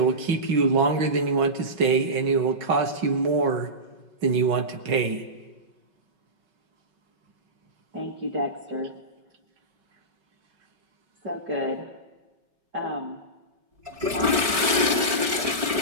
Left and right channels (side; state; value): left; late; 5.3 ms